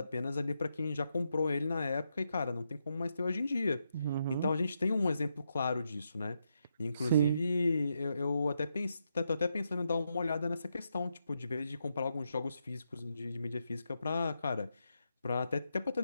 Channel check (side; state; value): both; inverted; correlation -0.82